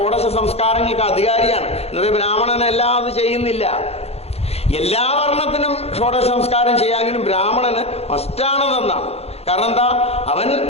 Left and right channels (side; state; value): right; late; 0.30 ms